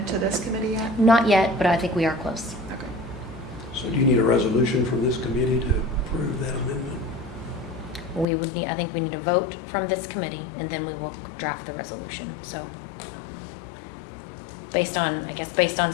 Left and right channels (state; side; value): drops out; right; at 8.2 s